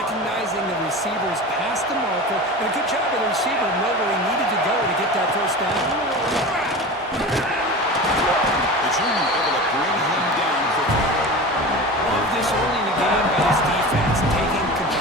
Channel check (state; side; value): normal; both; correlation 0.31